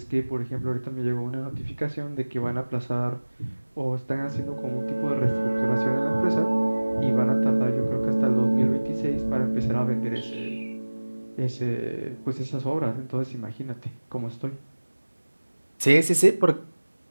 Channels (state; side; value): inverted; both; correlation -1.00